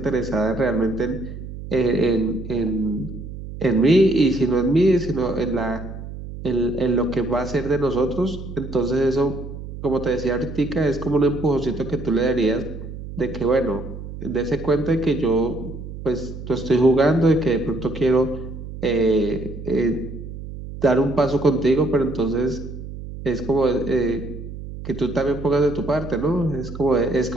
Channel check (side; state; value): right; noise; hum, 10 dB below the sound